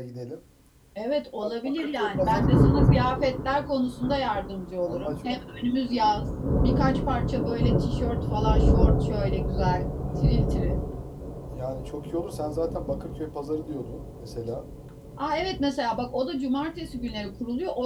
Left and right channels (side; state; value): both; identical; correlation 1.00